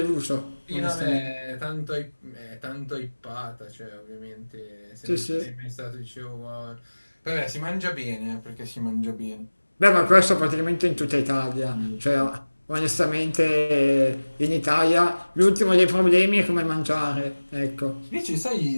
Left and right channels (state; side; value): inverted; both; correlation -1.00